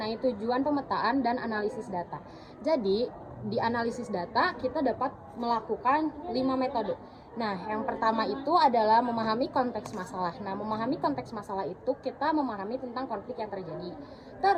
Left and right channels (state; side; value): identical; both; correlation 1.00